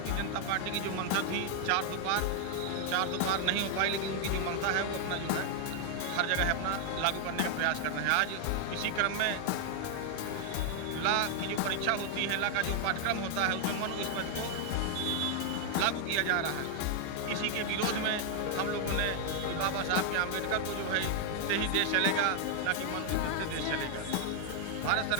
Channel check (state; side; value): different; both; correlation 0.00